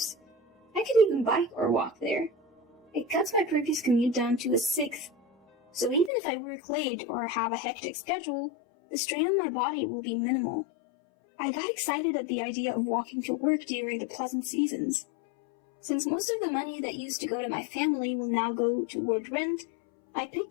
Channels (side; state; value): right; drops out; at 6.1 s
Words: I could even bike or walk there. It cuts my previous commute down to a 1/6, so even if I work late or have a hectic schedule, the strain on my body will be minimal. I got excited at the idea of walking to work during the pleasant seasons. Since most of the money that used to go to my family will now go toward rent, I